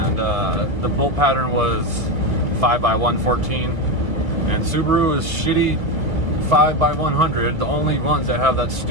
the bolt pattern was 5x114, and Subaru is shitty 5x100, the only ones that have that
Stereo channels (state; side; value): late; left; 2.1 ms